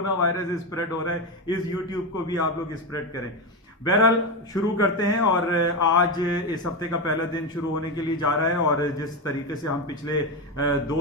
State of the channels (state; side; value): normal; both; correlation 0.14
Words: वायरस स्प्रेड हो रहा है इस यूट्यूब को भी आप लोग स्प्रेड करें। बहरहाल शुरू करते हैं और आज इस हफ्ते का पहला दिन शुरू होने के लिए जा रहा है। और जिस तरीके से हम पिछले